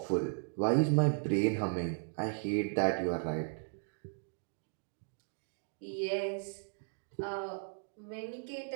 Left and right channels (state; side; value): silent; left; digital silence